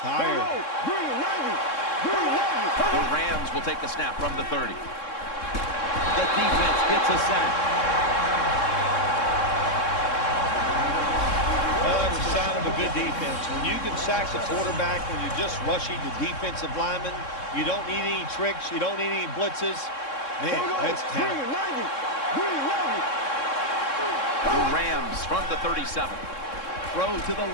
The Rams will take the snap from the 30. The defense gets a sack. Well, that's a sign of a good defense. When you can sack the quarterback when you're just rushing the defensive lineman, you don't need any tricks. You don't need any blitzes. Man, that's talent. The Rams from the 37. Throw to the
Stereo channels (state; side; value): late; right; 3.6 ms